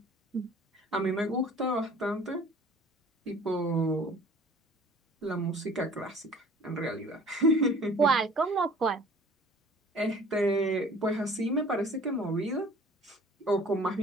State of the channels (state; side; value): normal; both; correlation 0.49